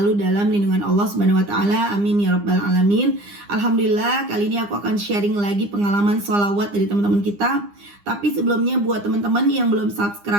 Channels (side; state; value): left; late; 9.8 ms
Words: dalam lindungan Allah Subhanahu wa taala. Amin ya rabbal alamin. Alhamdulillah, kali ini aku akan sharing lagi pengalaman sholawat dari teman-teman kita. Tapi sebelumnya buat teman-teman yang belum